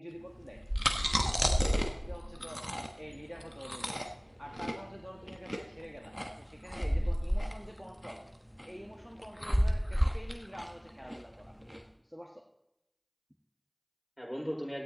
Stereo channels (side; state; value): both; identical; correlation 1.00